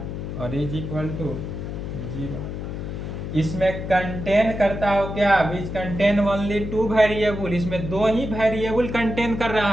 और इज इक्वल टू 0। इसमें कंटेन करता हो क्या, which contain only two variable, इसमें दो ही वेरिएबल कंटेन कर रहा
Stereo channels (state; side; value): noise; left; hum, 6 dB below the sound